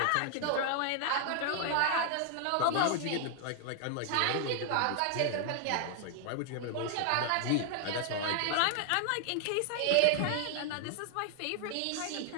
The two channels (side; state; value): both; different; correlation 0.00